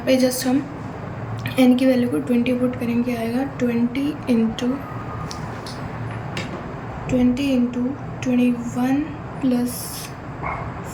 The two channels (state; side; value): identical; both; correlation 1.00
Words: पे जस्ट हम एन की वैल्यू को 20 पुट करेंगे, आएगा 20 into 21 plus